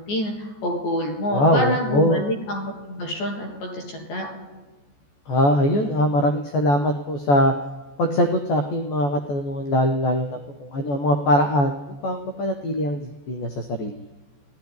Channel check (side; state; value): right; late; 14 ms